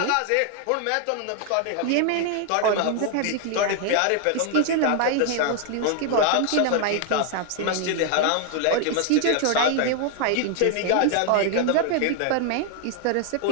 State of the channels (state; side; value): different; both; correlation 0.00